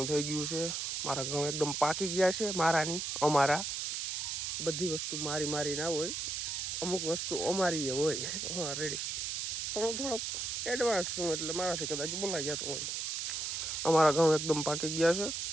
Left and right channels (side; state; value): right; noise; hiss, 2 dB below the sound